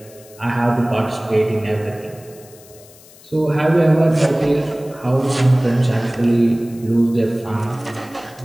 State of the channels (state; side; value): noise; left; hiss, 23 dB below the sound